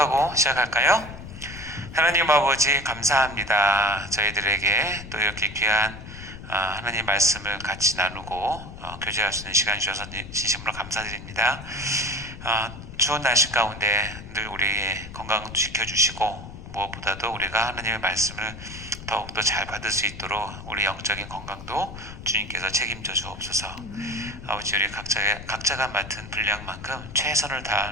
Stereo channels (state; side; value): noise; left; rumble, 13 dB below the sound